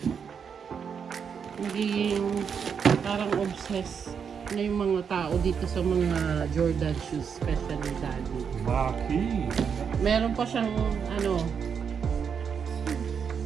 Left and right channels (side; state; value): left; quieter; 6.8 dB